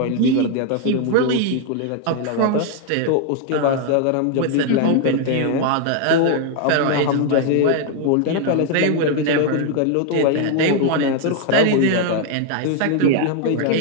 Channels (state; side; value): different; both; correlation 0.00